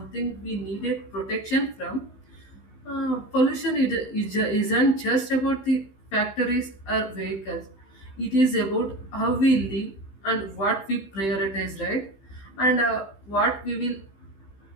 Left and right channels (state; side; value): late; right; 15 ms